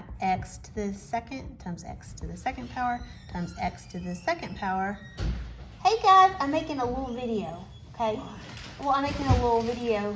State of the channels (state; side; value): identical; both; correlation 1.00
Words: x to the 2nd times x to the 2nd power times x to the 2nd power. Hey guys, I'm making a little video, okay? Well, I'm making a little